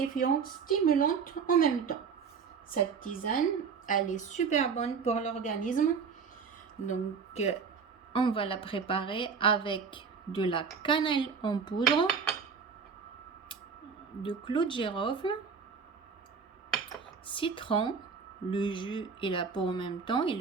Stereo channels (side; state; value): left; quieter; 5.8 dB